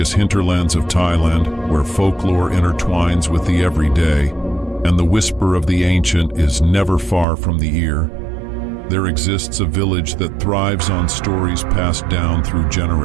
hinterlands of Thailand, where folklore intertwines with the everyday, and the whisper of the ancient is never far from the ear, there exists a village that thrives on stories passed down through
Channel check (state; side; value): drops out; left; at 7.2 s